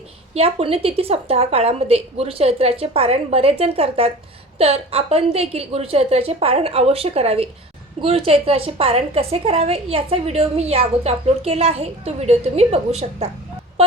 या पुण्यतिथी सप्ताह काळामध्ये गुरुचरित्राचे पारायण बरेच जण करतात, तर आपण देखील गुरुचरित्राचे पारायण अवश्य करावे. गुरुचरित्राचे पारायण कसे करावे याचा व्हिडिओ मी या अगोदर अपलोड केला आहे, तो व्हिडिओ तुम्ही बघू शकता.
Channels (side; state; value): both; normal; correlation 0.38